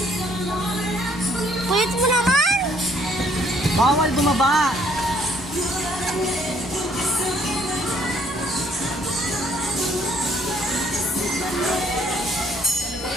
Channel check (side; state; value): both; normal; correlation 0.64